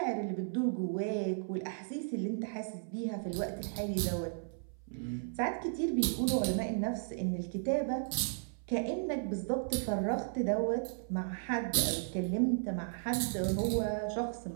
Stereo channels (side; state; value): left; silent; 55 dB below the other